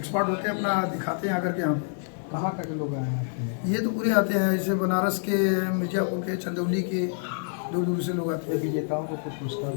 होते हैं अपना दिखाते हैं आकर के। यहाँ पे कहाँ तक लोग आए हैं? ये तो पूरे आते हैं, जैसे बनारस के, मिर्जापुर के, चंदौली के, दूर दूर से लोग आते हैं। विजेताओं को कुछ पुरस्कार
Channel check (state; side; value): silent; right; digital silence